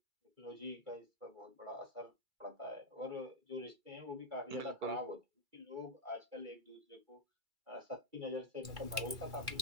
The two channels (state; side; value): late; left; 2.3 ms